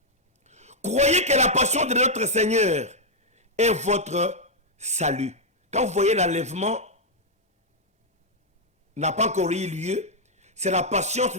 Croyez que la passion de notre Seigneur est votre salut. Quand vous voyez l'enlèvement n'a pas encore eu lieu, c'est la patience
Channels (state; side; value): normal; both; correlation -0.03